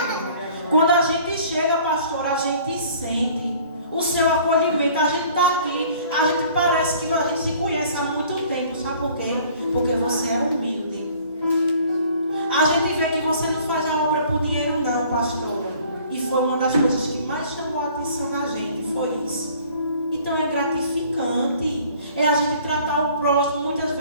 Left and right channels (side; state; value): both; inverted; correlation -0.53